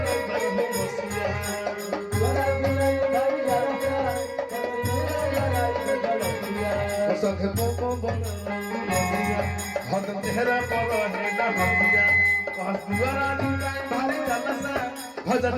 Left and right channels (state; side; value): identical; both; correlation 1.00